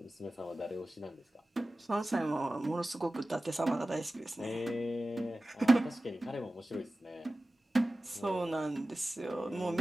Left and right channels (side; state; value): both; normal; correlation 0.96